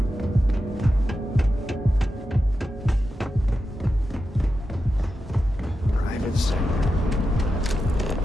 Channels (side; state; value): both; normal; correlation 0.90